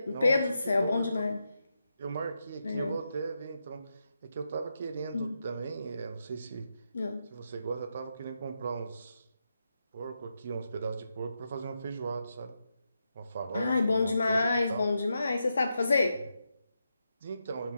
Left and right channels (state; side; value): inverted; both; correlation -0.85